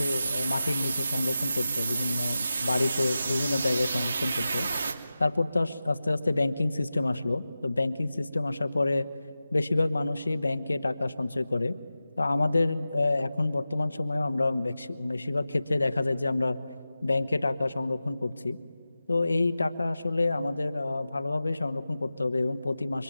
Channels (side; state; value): both; inverted; correlation -0.94